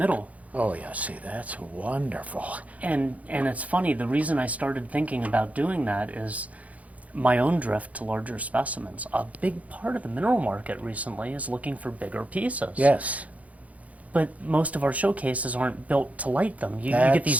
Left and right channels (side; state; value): left; late; 0.069 ms